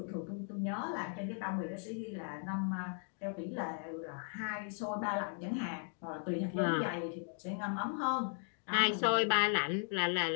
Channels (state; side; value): silent; right; 53 dB below the other